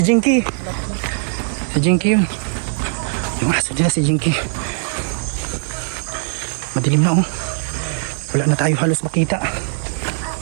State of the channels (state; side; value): silent; left; 66 dB below the other